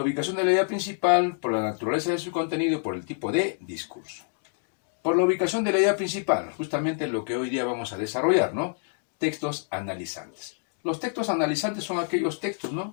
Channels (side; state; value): right; silent; 60 dB below the other